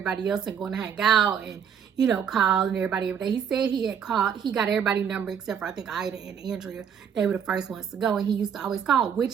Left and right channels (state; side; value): quieter; left; 7.8 dB